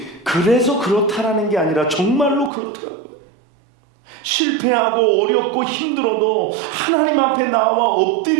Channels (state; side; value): drops out; left; at 2.5 s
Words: 그래서 그렇다라는 게 아니라 정말로 그렇더라고요. 실패하고 어렵고 힘들어도 하나님 앞에 나와